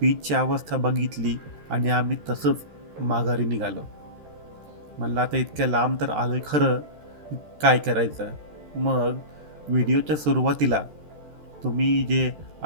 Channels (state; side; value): late; left; 13 ms